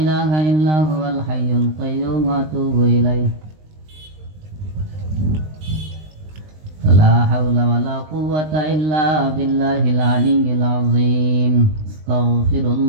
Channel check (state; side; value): late; left; 19 ms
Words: ইল্লা হুয়াল হাইয়ুল কাইয়্যুম ওয়া আতুবু ইলাইহি। لا حول ولا قوة إلا بالله العلي العظيم. استغفر